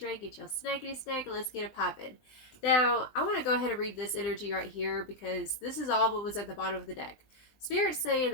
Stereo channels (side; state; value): right; late; 20 ms